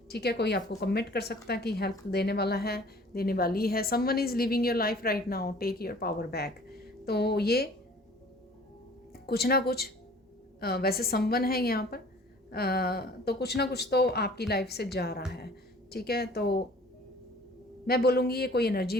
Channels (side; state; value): both; normal; correlation 0.50